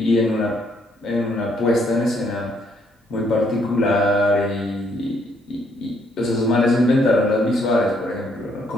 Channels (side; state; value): both; normal; correlation 0.70